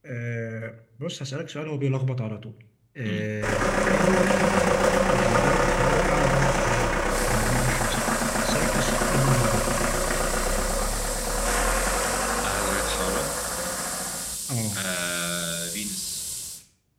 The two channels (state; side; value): identical; both; correlation 1.00